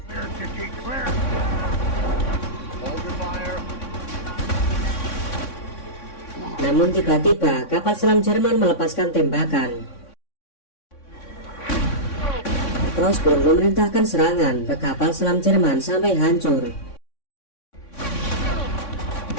Clear, Dike, clear. Hold your fire. Namun tiba-tiba kapal selam Jerman melepaskan tembakan. Cross pun memerintahkan serangan ke kapal selam Jerman sampai hancur.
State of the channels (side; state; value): right; late; 3.6 ms